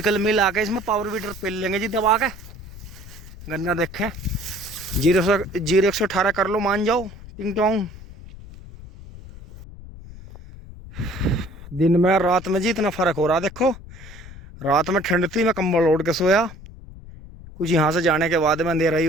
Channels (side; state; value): left; noise; rumble, 16 dB below the sound